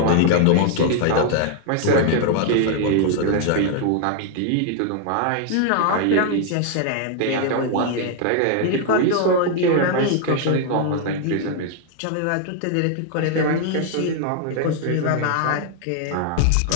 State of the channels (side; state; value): both; different; correlation 0.00